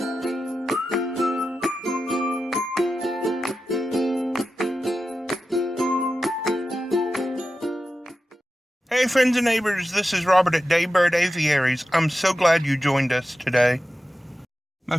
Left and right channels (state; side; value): normal; both; correlation 0.92